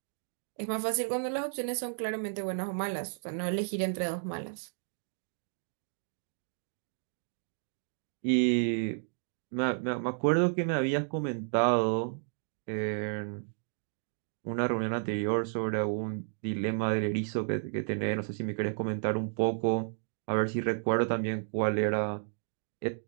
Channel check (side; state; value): left; silent; digital silence